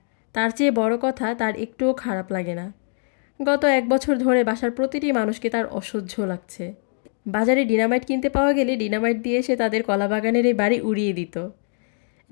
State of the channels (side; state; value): right; silent; 63 dB below the other